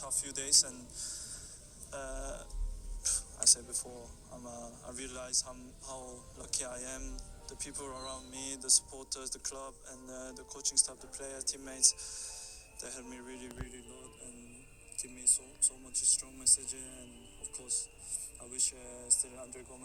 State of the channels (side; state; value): both; identical; correlation 1.00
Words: few days, and I said before, I realize how lucky I am. The people around me, the supporters, the club, and the coaching staff, the players, teammates, they helped me really a lot and give me so much strong message. And of course, I wish still Andre